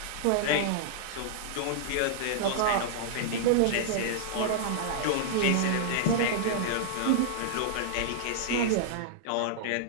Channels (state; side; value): different; both; correlation -0.01